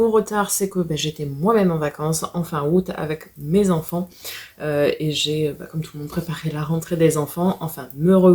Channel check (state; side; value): identical; both; correlation 1.00